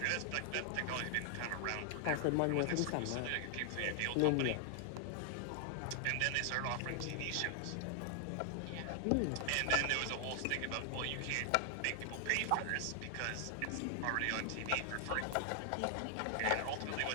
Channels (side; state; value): both; different; correlation 0.00